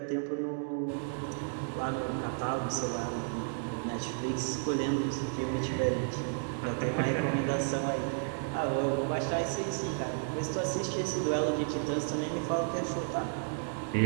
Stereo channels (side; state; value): left; silent; digital silence